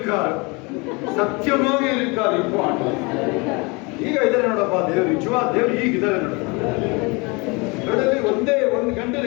ಸತ್ಯವಾಗಿ இருக்கார். இப்ப ಆಂಡವರು ಈಗ ಇದ್ದಾರೆ ನೋಡಪ್ಪ. ದೇವ್ರು ನಿಜವಾದ ದೇವ್ರು ಈಗಿದ್ದಾರೆ ನೋಡಪ್ಪ. ನೋಡಲ್ಲಿ ಒಂದು ಗಂಟೆಲಿ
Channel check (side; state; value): right; quieter; 28.0 dB